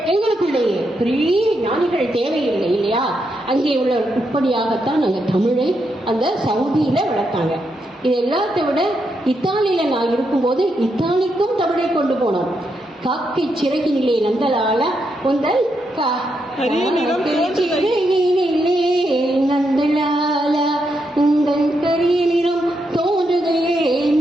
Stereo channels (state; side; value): normal; both; correlation 0.81